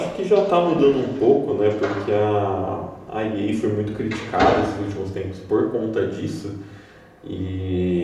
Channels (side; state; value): both; identical; correlation 1.00